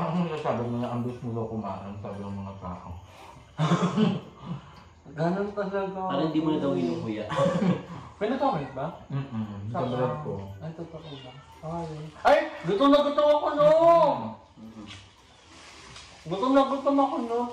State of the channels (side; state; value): both; identical; correlation 1.00